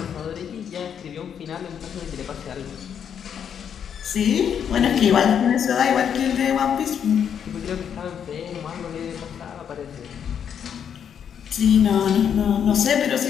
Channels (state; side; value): quieter; right; 8.2 dB